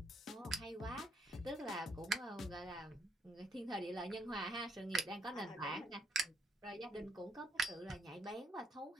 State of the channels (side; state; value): both; normal; correlation 0.72